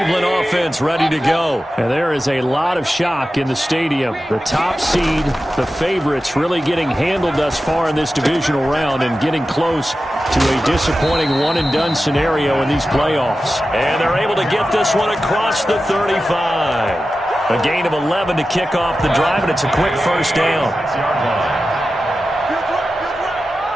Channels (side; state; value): both; normal; correlation 0.93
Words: offense ready to go. And there is a lot of shock in the stadium. The top seed, the favorites, really getting handled thus far in this divisional round and getting close to a disappointing one-and-done scenario in these playoffs. And they're able to get this one across the 35. A gain of 11 to kick off the drive, and it's a quick first down.